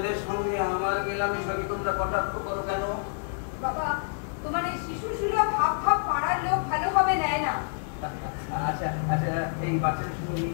সঙ্গে আমার মেলামেশাকে তোমরা কটাক্ষ করো কেন? বাবা, তোমার এই শিশু সুলভ ভাব ভাব পাড়ার লোক ভালোভাবে নেয় না। আচ্ছা আচ্ছা, এই বাচ্চাদের সঙ্গে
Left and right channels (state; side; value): silent; right; 59 dB below the other